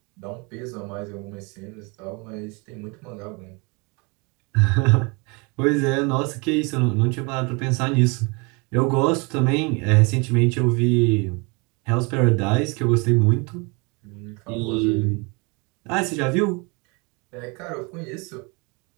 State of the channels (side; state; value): left; quieter; 29.9 dB